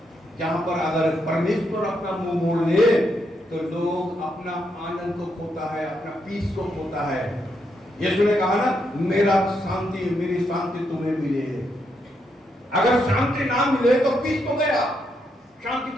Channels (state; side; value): normal; both; correlation 0.79